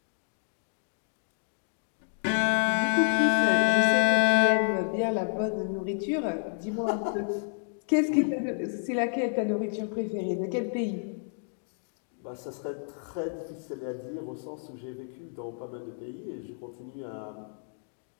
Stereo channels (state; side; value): silent; right; digital silence